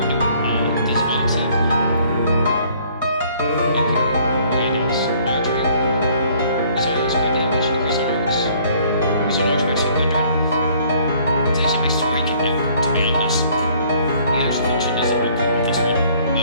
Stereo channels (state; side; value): inverted; both; correlation -0.59